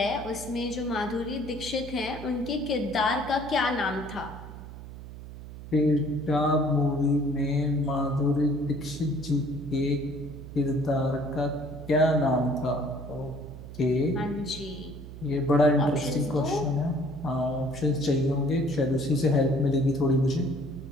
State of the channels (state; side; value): noise; right; hum, 13 dB below the sound